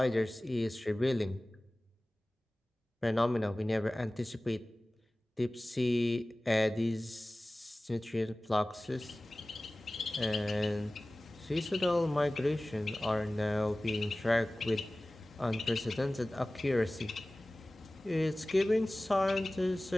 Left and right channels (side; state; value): both; normal; correlation 0.98